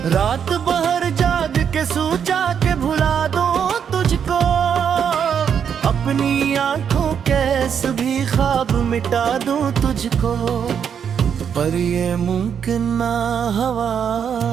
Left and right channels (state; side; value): quieter; left; 7.8 dB